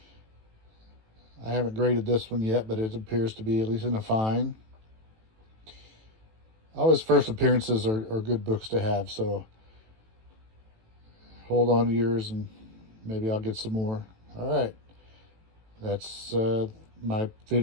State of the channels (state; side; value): late; left; 18 ms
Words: I haven't graded this one yet, but it appears to be at least in a fine. All his first appearances are good books to have, so hold on to yours and maybe I'll get some more. All right, that's my